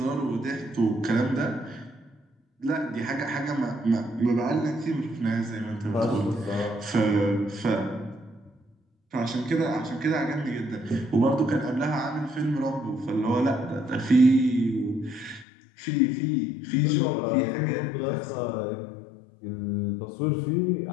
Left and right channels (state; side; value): drops out; right; at 15.5 s